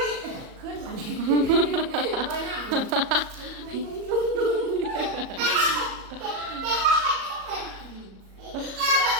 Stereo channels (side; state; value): left; late; 37 ms